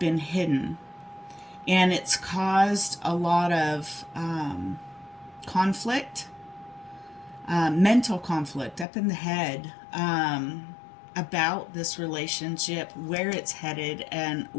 hidden, and it's caused a lot of conflict, mental conflict up in the head, about this relationship, where it's headed, and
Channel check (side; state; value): right; drops out; at 8.8 s